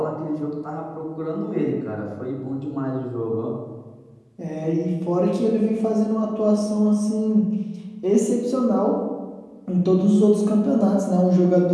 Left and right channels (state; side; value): identical; both; correlation 1.00